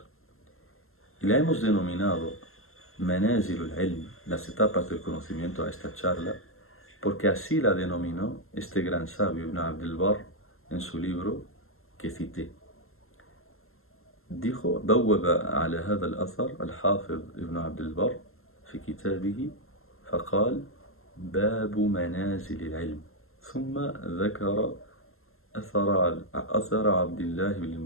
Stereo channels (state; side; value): late; right; 0.62 ms